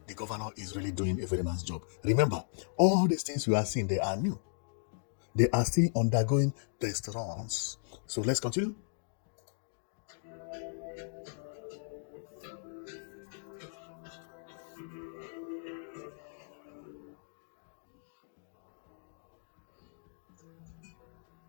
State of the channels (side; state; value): right; silent; digital silence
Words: The governor is really doing a very nice job. Remember, all these things you are seeing, they are new. They are still undergoing test runs. So let's continue.